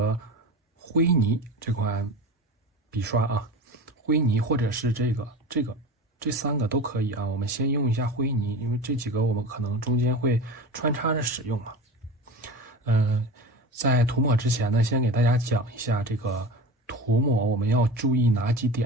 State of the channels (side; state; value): both; normal; correlation 0.31